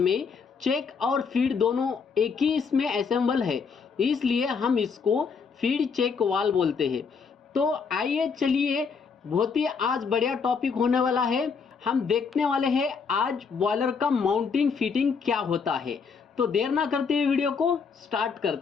चेक और फीड दोनों एक ही इसमें असेंबल है, इसलिए हम इसको फीड चेक वाल बोलते हैं। तो आइए चलिए, बहुत ही आज बढ़िया टॉपिक होने वाला है। हम देखने वाले हैं आज बॉयलर का माउंटिंग फिटिंग क्या होता है। तो देर ना करते हुए वीडियो को स्टार्ट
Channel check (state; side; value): quieter; right; 5.6 dB